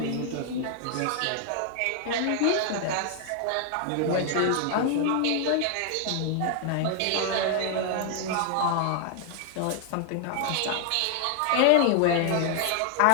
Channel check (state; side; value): different; both; correlation 0.00